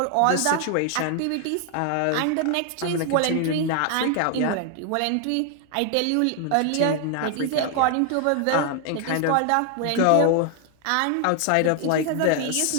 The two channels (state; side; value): different; both; correlation 0.00